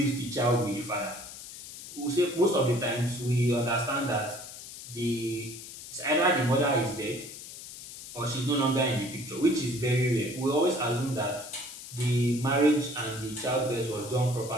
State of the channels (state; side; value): noise; left; hiss, 13 dB below the sound